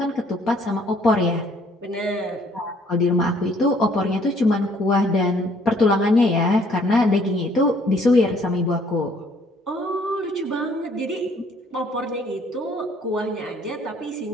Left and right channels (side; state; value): both; normal; correlation 0.62